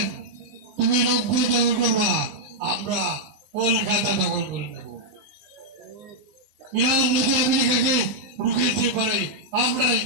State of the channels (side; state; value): left; late; 20 ms